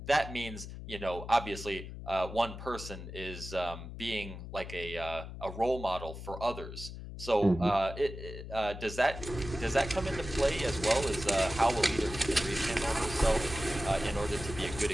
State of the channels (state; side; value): noise; left; hum, 10 dB below the sound